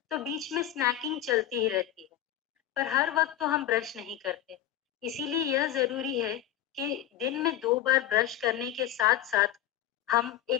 तो बीच में स्नैकिंग चलती ही रहती है। पर हर वक्त तो हम ब्रश नहीं करते, इसीलिए यह जरूरी है कि दिन में 2 बार ब्रश करने के साथ साथ हम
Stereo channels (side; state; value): right; quieter; 12.1 dB